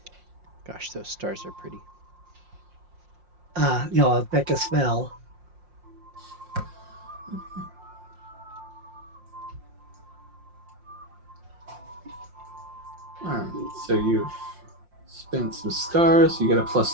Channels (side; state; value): left; late; 5.6 ms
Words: Gosh, those stars are pretty. A Becca spell. Alright, so you've spent some stars. You get a